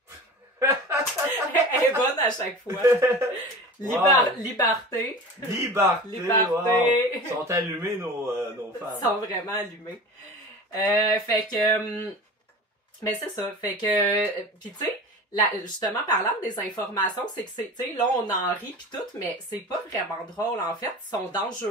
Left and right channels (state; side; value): normal; both; correlation 0.35